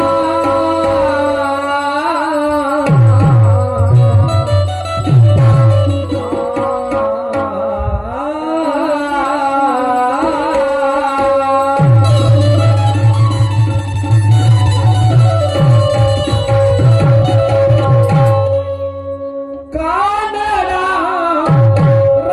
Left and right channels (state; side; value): identical; both; correlation 1.00